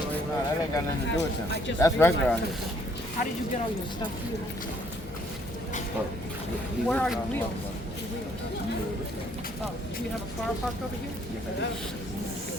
right now. That ain't got nothing to do with them. That's regular out here. How did you get all your stuff here? Oh, Where are your wheels? Oh, do you have a car parked over here?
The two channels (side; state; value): both; normal; correlation 0.65